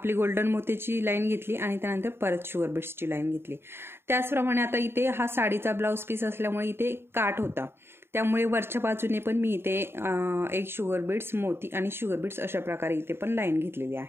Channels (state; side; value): late; left; 0.11 ms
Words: गोल्डन मोत्याची लाईन घेतली आणि त्यानंतर परत शुगर बीड्सची लाईन घेतली. त्याचप्रमाणे आता इथे हा साडीचा ब्लाऊज पीस असल्यामुळे इथे काठ होता, त्यामुळे वरच्या बाजूने पण मी इथे एक शुगर बीड्स, मोती आणि शुगर बीड्स अशा प्रकारे इथे पण लाईन घेतलेली